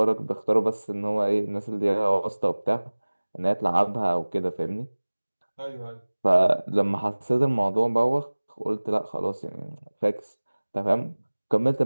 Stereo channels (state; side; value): inverted; both; correlation -1.00